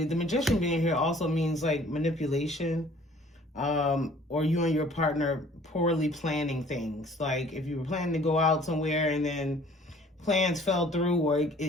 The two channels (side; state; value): both; normal; correlation 0.54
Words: the Magician being here also means like manipulation. Or you and your partner poorly planning things. Like if you were planning to go out somewhere and then plans fell through, or